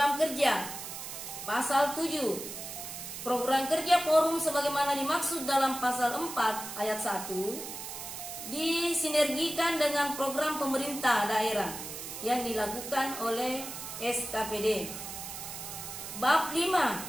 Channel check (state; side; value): noise; right; hiss, 9 dB below the sound